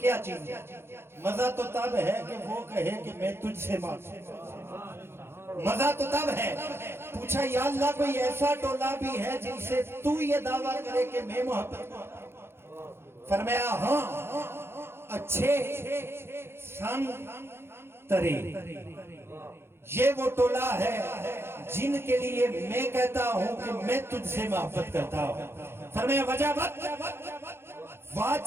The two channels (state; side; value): late; left; 0.12 ms